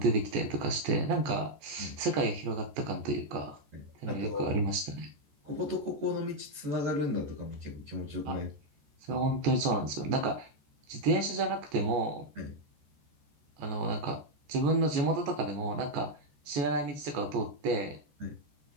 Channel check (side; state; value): left; late; 14 ms